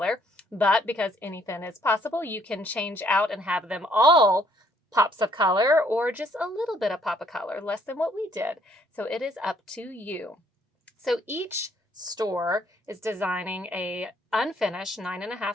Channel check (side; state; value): both; normal; correlation 0.65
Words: But because anything is possible, you can change out and have them all pops of color or just a little bit of pop of color, less than what we did. So it is up to you. So each store is designing a unfinished 9.5